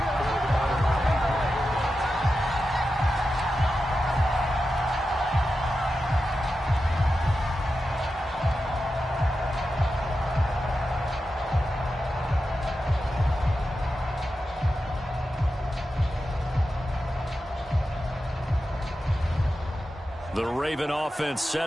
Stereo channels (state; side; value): normal; both; correlation 0.91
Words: The Raven offense